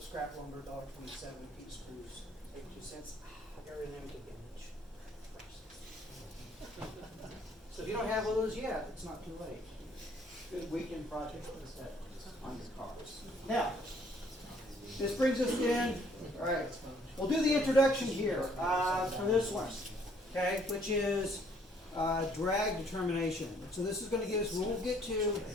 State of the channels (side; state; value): both; normal; correlation 0.63